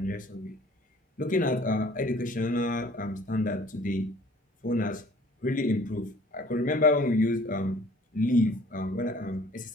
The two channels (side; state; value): both; normal; correlation 0.52